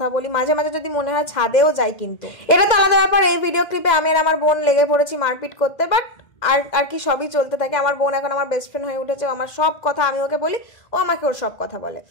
বলি, মাঝে মাঝে যদি মনে হয় ছাদেও যাই। কিন্তু এটা তো আলাদা ব্যাপার। এই ভিডিও ক্লিপে আমি আর আমার বোন লেগে পড়েছি মারপিট করতে, বাট আর কি সবই চলতে থাকে। আমার বোন এখন আমার বেস্ট ফ্রেন্ড হয়ে উঠেছে, আমার সব কথা আমি ওকে বলি, ও আমাকে ওর সব কথা বলে।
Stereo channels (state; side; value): late; right; 2.1 ms